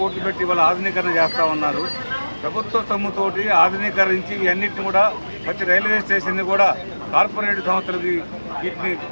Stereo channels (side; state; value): both; inverted; correlation -1.00